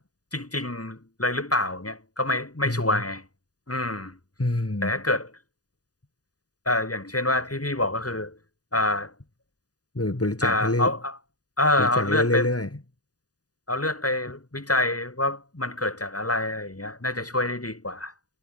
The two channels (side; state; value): right; late; 0.68 ms